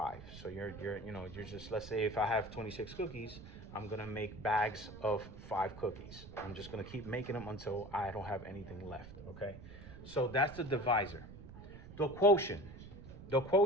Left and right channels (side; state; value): right; noise; rumble, 14 dB below the sound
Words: So you're just, let's say if I have 26 cookies, I'm gonna make bags of 5 cookies. I'm just gonna keep making them until I don't have anything left, okay? So that's the divisor. The quotient